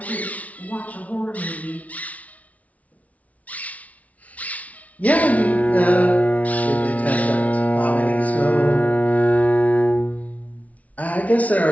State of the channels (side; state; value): right; late; 0.069 ms